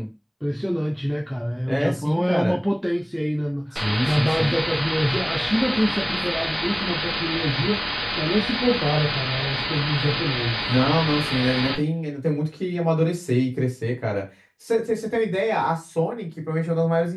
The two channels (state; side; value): identical; both; correlation 1.00